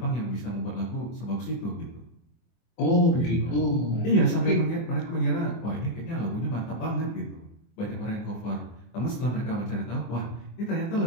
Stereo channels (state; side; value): late; right; 24 ms